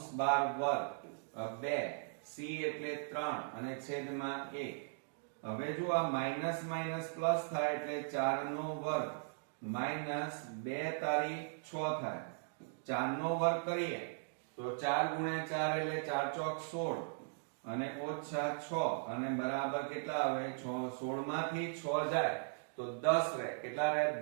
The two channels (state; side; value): silent; left; digital silence